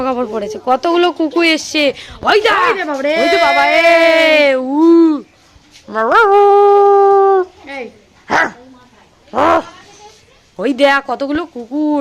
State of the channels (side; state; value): both; identical; correlation 1.00